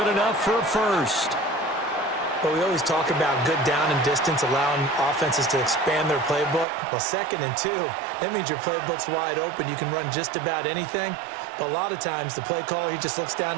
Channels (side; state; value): left; drops out; at 6.7 s